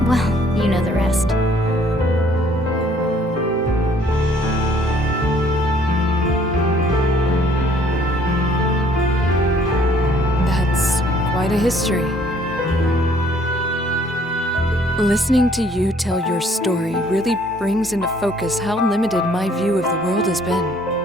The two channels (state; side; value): normal; both; correlation 0.60